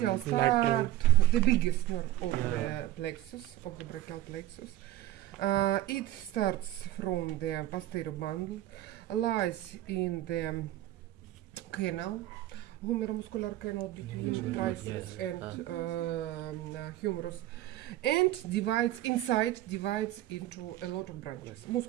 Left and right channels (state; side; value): quieter; left; 14.5 dB